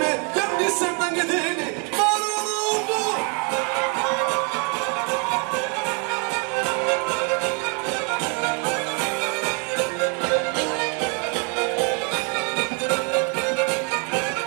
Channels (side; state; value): left; quieter; 35.9 dB